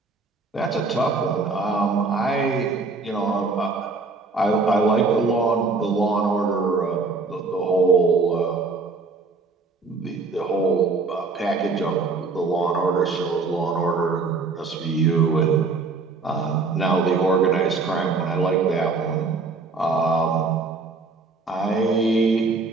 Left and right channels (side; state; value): left; quieter; 4.1 dB